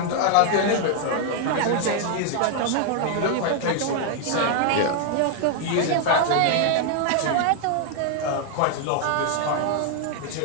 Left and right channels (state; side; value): different; both; correlation 0.00